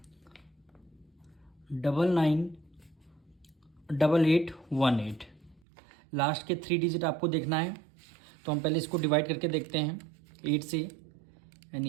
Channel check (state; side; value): drops out; left; at 5.6 s